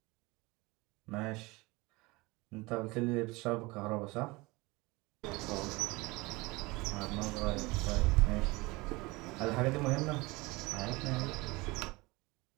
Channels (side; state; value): left; quieter; 23.5 dB